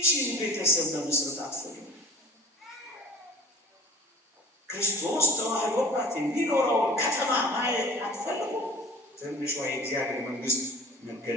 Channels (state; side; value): normal; both; correlation 0.44